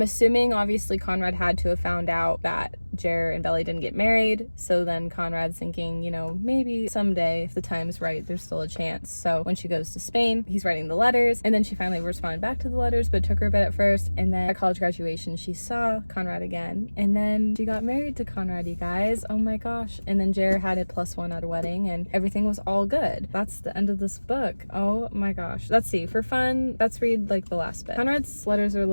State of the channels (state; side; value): inverted; both; correlation -1.00